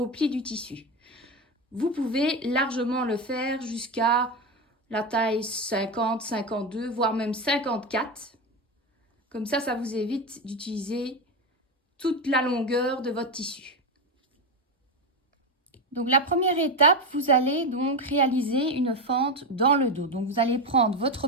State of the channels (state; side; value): normal; both; correlation 0.15